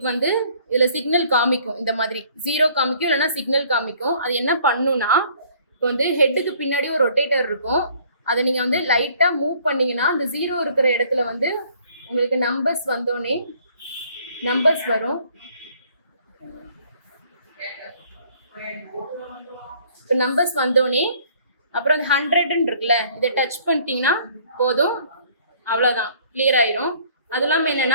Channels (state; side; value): inverted; both; correlation -0.58